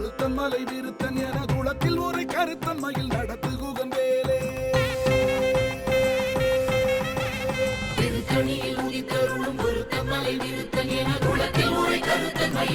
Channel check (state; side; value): identical; both; correlation 1.00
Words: மலை விருத்தன் என குளத்தில் ஒரு கருத்தன் மயில் நடத்து குகன் வேலே. திருத்தணியில் உதித்தருளும் பொருத்தன் மலை விருத்தன் என குளத்தில் ஒரு கருத்தன்